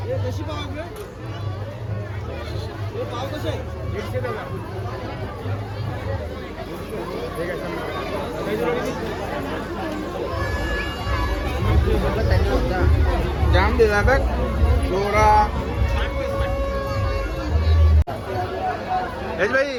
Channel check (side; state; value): both; identical; correlation 1.00